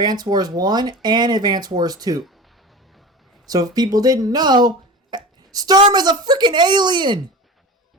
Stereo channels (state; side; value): normal; both; correlation 0.31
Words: Wars 1 and Advance Wars 2. So if people didn't know, Sturm is a freaking alien!